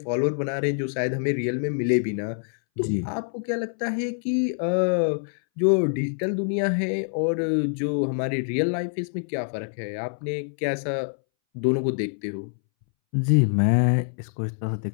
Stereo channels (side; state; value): right; silent; 61 dB below the other